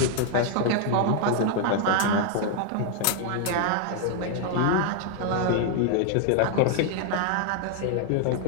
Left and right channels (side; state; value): both; different; correlation 0.00